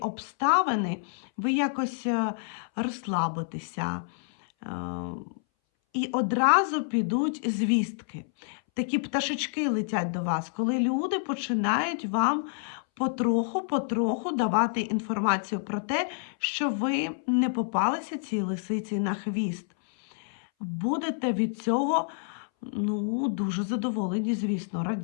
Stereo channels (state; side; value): silent; right; 59 dB below the other